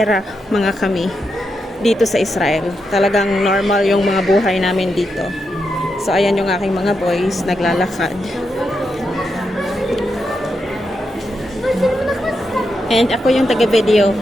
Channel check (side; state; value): both; normal; correlation 0.85